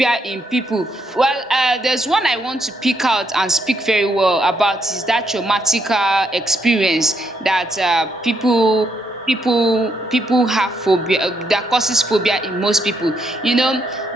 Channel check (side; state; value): both; normal; correlation 0.76